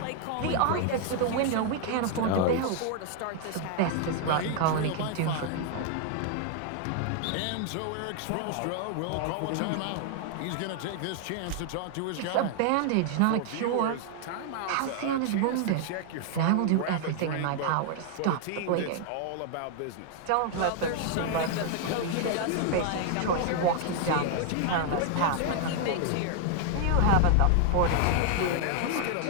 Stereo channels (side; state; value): both; different; correlation 0.00